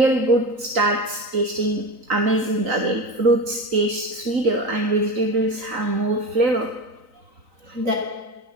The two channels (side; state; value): left; late; 3.9 ms